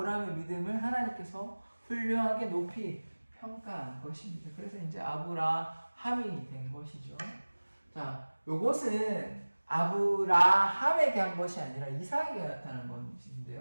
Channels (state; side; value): inverted; both; correlation -1.00